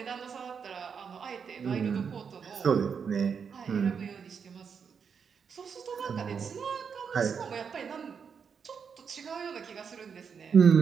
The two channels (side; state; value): left; quieter; 6.5 dB